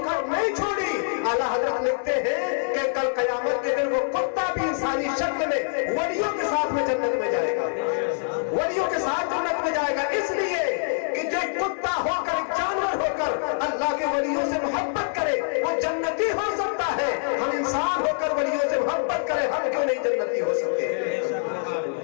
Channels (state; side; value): silent; right; 62 dB below the other